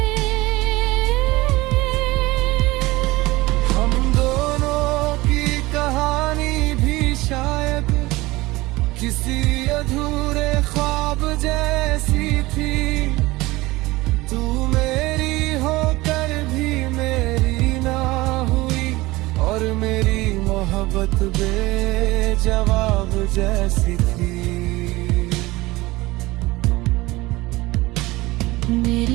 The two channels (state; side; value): quieter; left; 20.2 dB